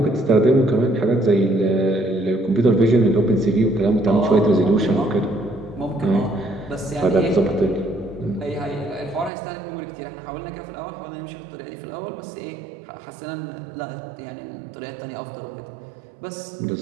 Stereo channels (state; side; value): drops out; left; at 9.3 s